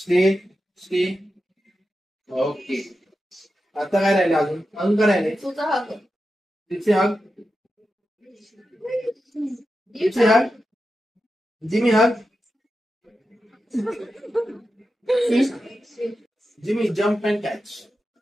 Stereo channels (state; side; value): normal; both; correlation 0.90